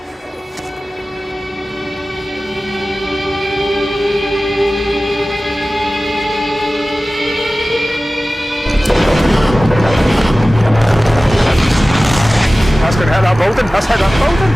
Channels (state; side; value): normal; both; correlation 0.97